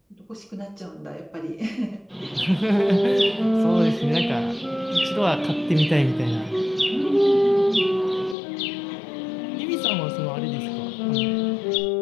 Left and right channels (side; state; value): right; drops out; at 8.3 s